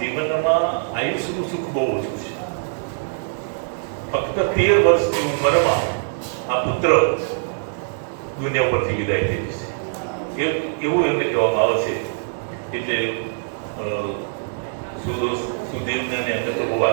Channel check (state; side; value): silent; left; digital silence